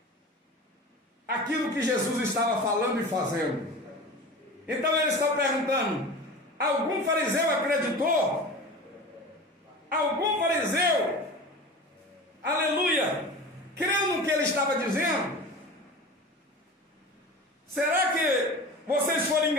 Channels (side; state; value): both; normal; correlation 0.34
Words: aquilo que Jesus estava falando e fazendo. Então ele está perguntando: algum fariseu acreditou? Algum fariseu, aleluia, creu no que ele estava dizendo? Será que vocês foram